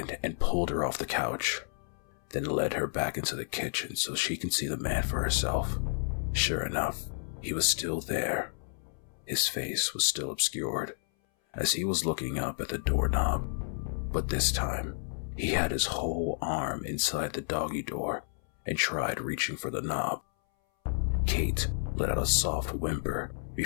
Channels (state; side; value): silent; right; 57 dB below the other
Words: and pulled her off the couch, then led her back into the kitchen so she can see the man for herself. Sure enough, he was still there. His face was still obscured, as he was looking up at the doorknob, but this time, he had his whole arm inside the doggy door and tried reaching for the knob. Kate let out a soft whimper